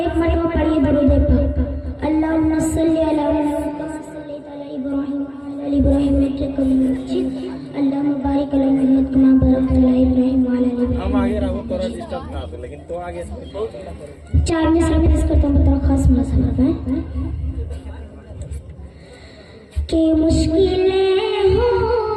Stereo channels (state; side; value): identical; both; correlation 1.00